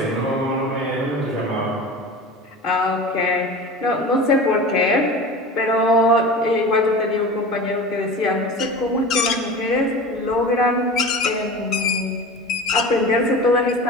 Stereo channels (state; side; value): normal; both; correlation 0.34